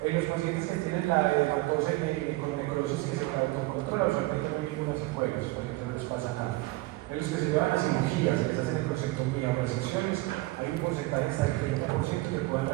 En los pacientes que tienen la hematosa y con necrosis que se puede autocontrolar, usualmente no hay ninguna secuela, los pacientes no les pasa nada. En los que se llevan a cirugías, que se hacen necrosectomía o resecciones, hay un porcentaje hasta del 30% que puedan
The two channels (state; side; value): quieter; left; 20.5 dB